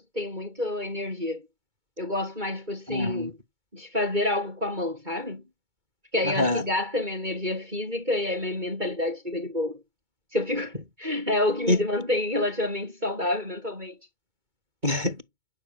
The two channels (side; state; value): left; late; 2.2 ms